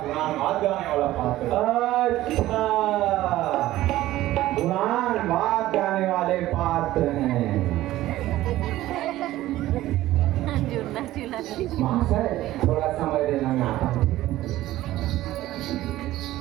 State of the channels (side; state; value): left; quieter; 15.4 dB